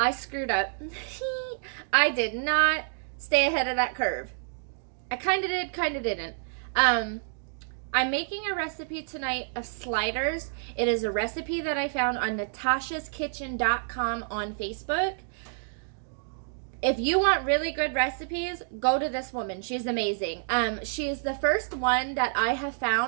screwed up. I did not stay ahead of that curve. I kind of did, kind of didn't. I'm making a recipe tonight of sliders. It is a recipe that I found on natashaskitchen.com on Facebook. If you want really good recipes, go to this woman. She's amazing. She's the first one that I have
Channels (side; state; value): left; silent; digital silence